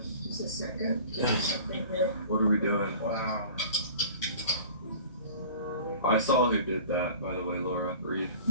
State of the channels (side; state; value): both; inverted; correlation -0.43